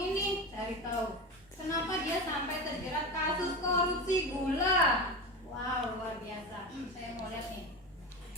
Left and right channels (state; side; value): normal; both; correlation 0.24